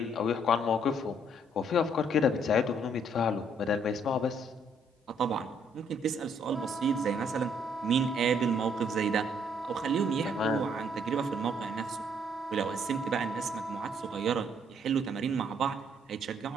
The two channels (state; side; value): normal; both; correlation 0.67